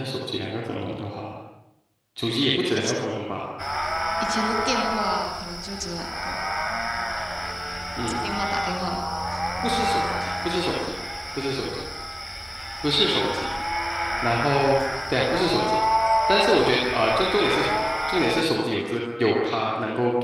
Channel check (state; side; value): identical; both; correlation 1.00